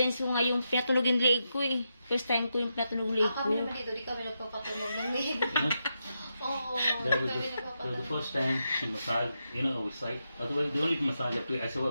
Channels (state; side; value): inverted; both; correlation -0.85